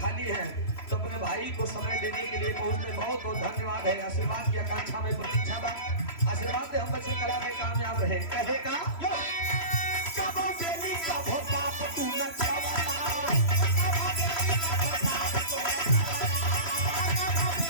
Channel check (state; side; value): late; right; 3.0 ms